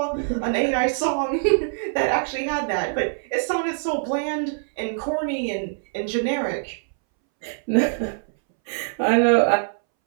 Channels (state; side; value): silent; left; 63 dB below the other